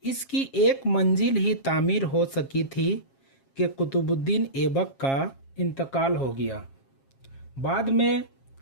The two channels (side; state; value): right; late; 7.4 ms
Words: इसकी एक मंजिल ही तामीर हो सकी थी कि कुतुबुद्दीन ऐबक का इंतकाल हो गया। बाद में